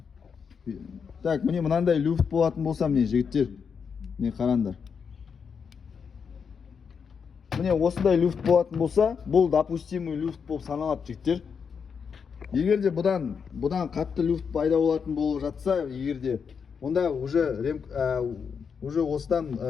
Так, міне мынандай люфт болатын болса, міне жігіттер. Не қараңдар. Міне осындай люфт болатын болса, бұл допустимый люфт болып саналады жігіттер. Егерде бұдан қатты люфт пайда болатын болып жатса, егерде онда уже осыдан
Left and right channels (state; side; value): quieter; right; 6.3 dB